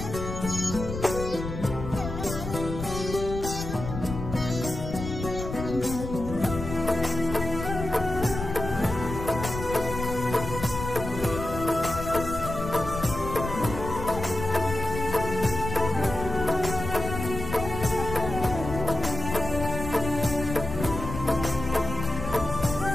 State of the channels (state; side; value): noise; left; rumble, 7 dB below the sound